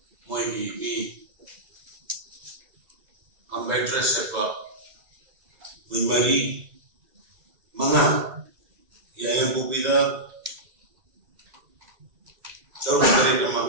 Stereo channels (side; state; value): left; late; 2.0 ms